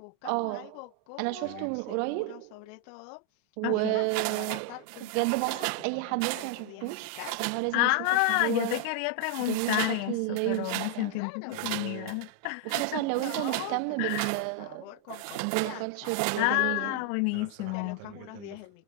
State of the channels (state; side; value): different; both; correlation 0.00